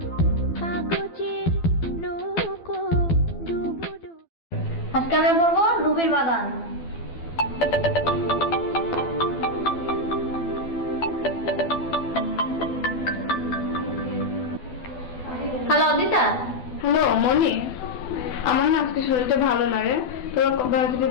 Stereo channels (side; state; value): right; late; 12 ms